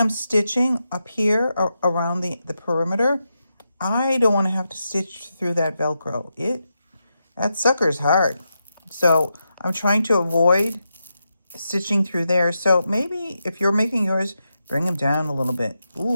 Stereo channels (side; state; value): both; inverted; correlation -0.87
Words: stitching up here around the perimeter, I don't want to have to stitch through that Velcro. That sucker's hard. So I'm trying to avoid stitching through there. So maybe if you're making yours, bring them down a little bit.